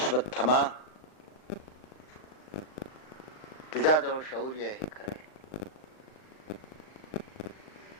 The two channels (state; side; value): late; right; 39 ms